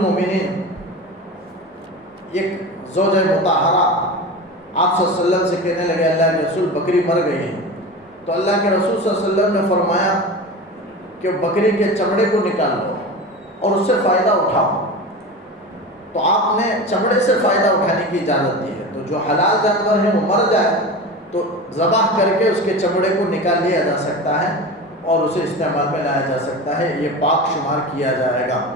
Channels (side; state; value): both; normal; correlation 0.29